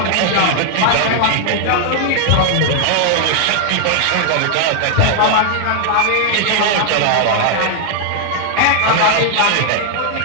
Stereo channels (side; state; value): both; different; correlation 0.00